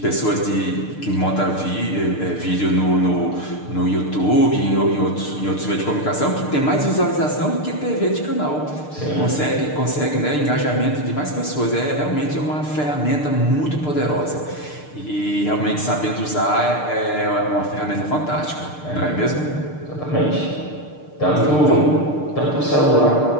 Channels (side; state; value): right; late; 6.7 ms